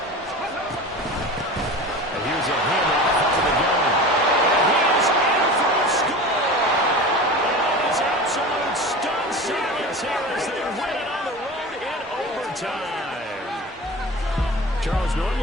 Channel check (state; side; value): normal; both; correlation 0.33